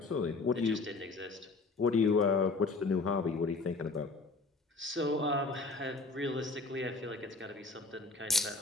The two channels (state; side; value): quieter; right; 3.7 dB